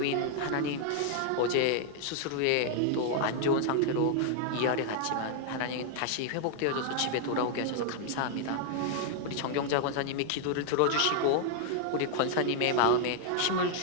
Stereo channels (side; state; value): both; different; correlation 0.00